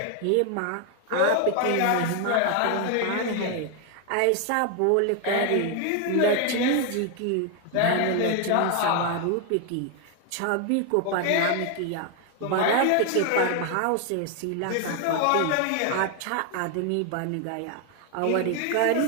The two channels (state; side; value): different; both; correlation 0.01